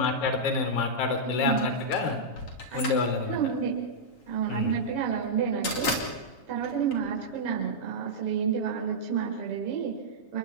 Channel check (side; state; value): right; late; 7.3 ms